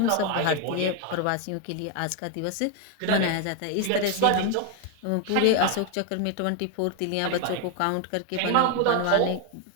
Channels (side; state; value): both; different; correlation 0.01